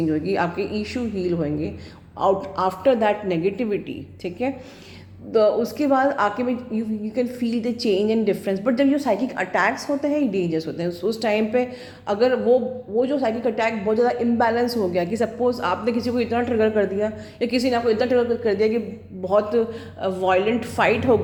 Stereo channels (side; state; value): both; identical; correlation 1.00